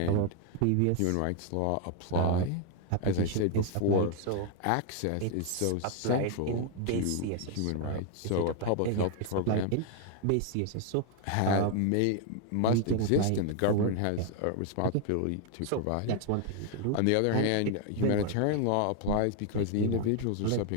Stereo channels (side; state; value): both; different; correlation 0.00